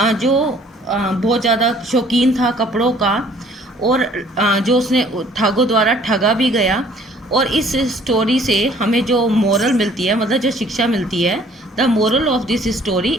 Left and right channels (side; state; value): both; normal; correlation 0.56